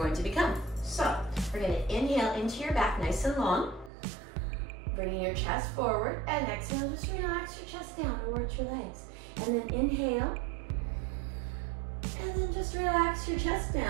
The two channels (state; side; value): drops out; left; at 3.9 s